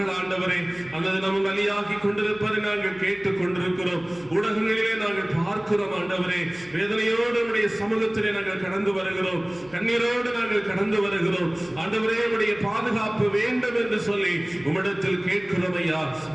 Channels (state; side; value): noise; right; hum, 25 dB below the sound